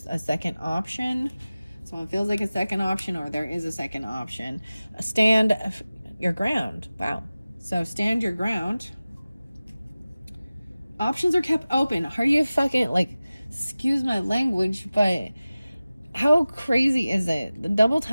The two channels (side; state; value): both; inverted; correlation -0.97